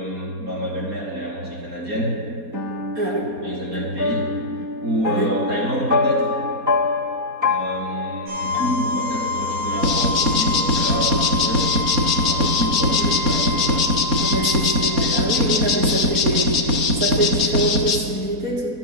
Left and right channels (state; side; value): late; left; 4.2 ms